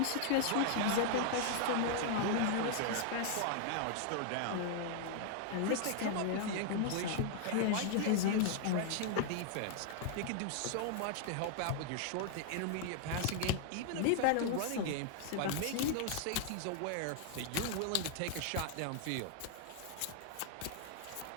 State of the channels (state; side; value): different; both; correlation 0.00